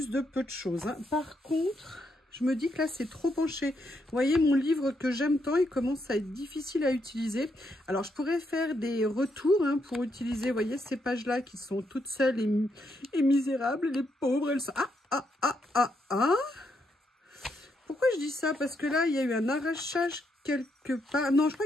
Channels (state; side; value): normal; both; correlation 0.78